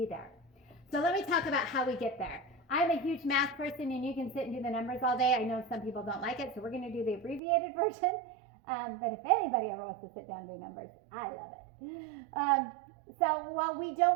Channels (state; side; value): drops out; left; at 7.4 s